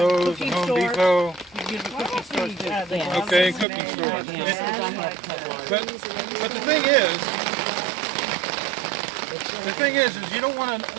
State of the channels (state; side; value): drops out; left; at 3.7 s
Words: and Home Depot. You can get the cookie stores too. Yeah. Okay, cooking stores. But the thing is you don't want